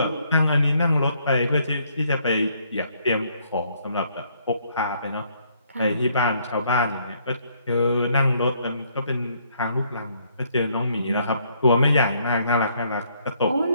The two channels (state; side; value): inverted; both; correlation -0.68